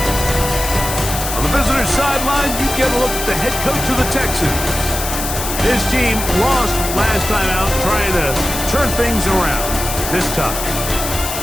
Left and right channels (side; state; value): left; noise; hiss, 5 dB below the sound